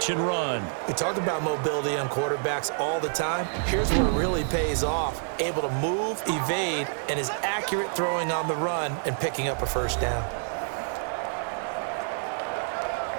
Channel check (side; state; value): left; silent; digital silence